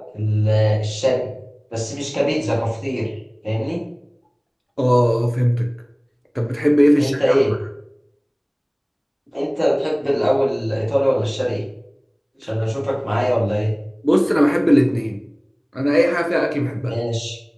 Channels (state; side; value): identical; both; correlation 1.00